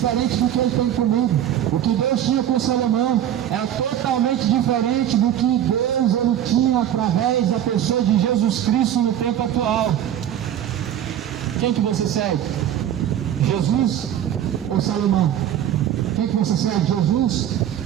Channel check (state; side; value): quieter; left; 10.6 dB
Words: do que ele tem comigo. O que Deus tinha com Salomão é totalmente diferente do que Deus ele tinha através da pessoa de Jesus Cristo no tempo atual. Quem que você segue? Jesus ou Salomão? Quem que você segue? Jesus